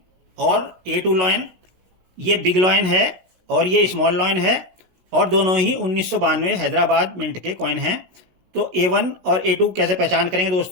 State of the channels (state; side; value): late; left; 17 ms